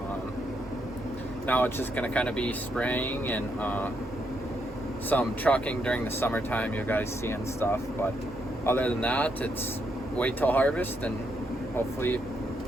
now it's just gonna kind of be spraying and some trucking during the summertime, you guys see and stuff, but other than that, it's wait till harvest and hopefully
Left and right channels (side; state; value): both; normal; correlation 0.78